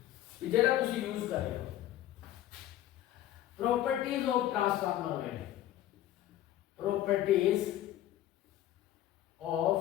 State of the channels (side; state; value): right; quieter; 13.1 dB